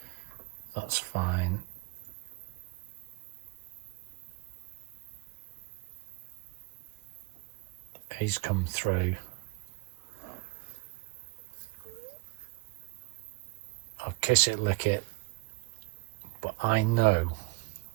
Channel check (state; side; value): quieter; left; 26.8 dB